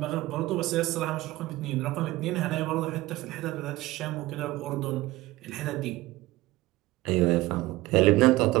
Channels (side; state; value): left; quieter; 18.6 dB